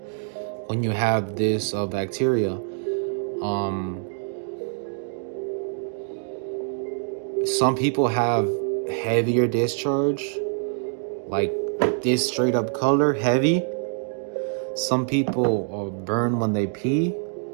when you have this bacteria. Some people have heavier discharge, like this straight up color, heavy. Some people burn when they pee.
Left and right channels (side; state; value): left; silent; 62 dB below the other